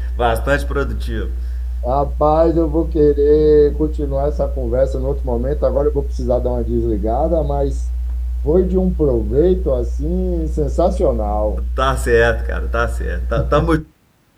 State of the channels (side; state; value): both; identical; correlation 1.00